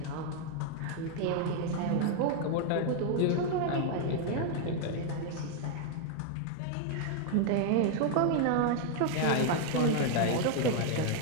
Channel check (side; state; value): both; different; correlation 0.00